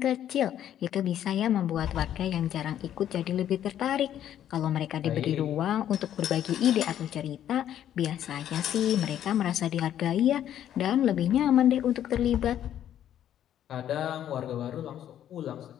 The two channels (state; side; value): quieter; right; 10.8 dB